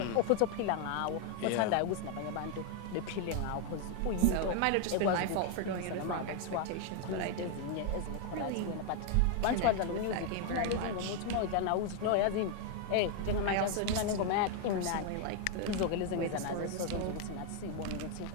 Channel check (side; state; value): both; different; correlation 0.00